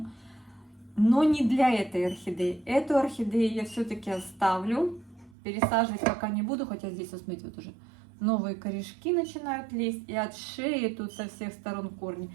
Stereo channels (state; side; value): drops out; left; at 5.4 s